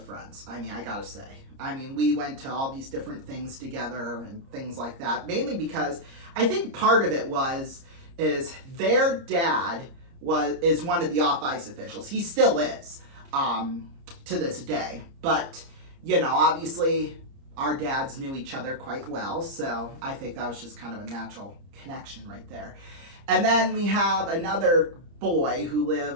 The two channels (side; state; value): left; late; 30 ms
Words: friends. I gotta say. We went to all these different things together and things like that. Mainly because I think part of it is their dad is one of the off-ice officials. He still is, to this day. But, obviously our dads knew each other quite well. So I think that was just kind of a natural connection right there. And then we have another boy who